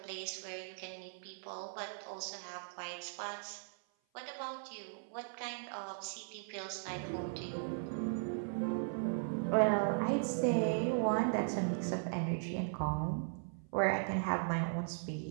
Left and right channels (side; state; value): left; silent; 52 dB below the other